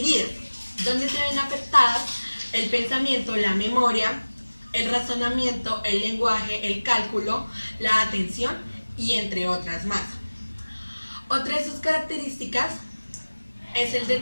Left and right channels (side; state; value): both; inverted; correlation -1.00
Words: donde se ven afectadas el pensamiento, la memoria, el razonamiento, el lenguaje, el cálculo, la atención y entre otras más. Otra de sus características es el